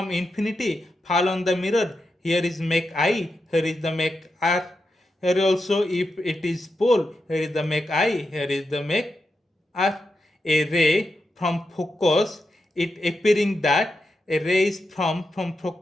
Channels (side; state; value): both; normal; correlation 0.88